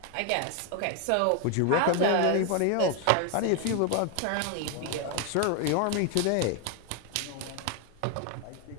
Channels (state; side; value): different; both; correlation 0.01